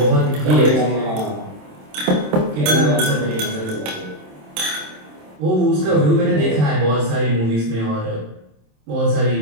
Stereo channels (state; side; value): late; left; 27 ms